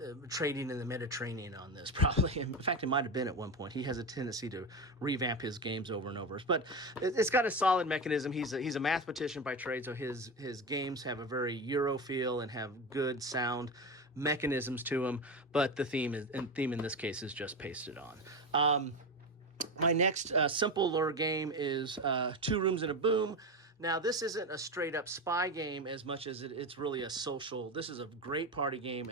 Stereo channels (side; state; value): both; normal; correlation 0.19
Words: in the Mediterranean on this probably. In fact, it might have been at one point. He has a tendency to revamp his games over and over. But it's got a solid mechanism. He's a mathematician by trade, so his games have a very Euro feel and have good sound mechanisms to them. But the theme in this case is just pasted on. My next simple lure game is 2 Rooms and a Boom. Now, this isn't a straight-up spy game as much as it's really a social. This is a great party game